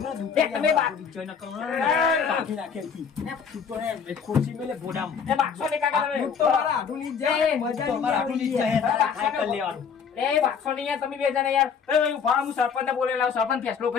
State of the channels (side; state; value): right; quieter; 6.6 dB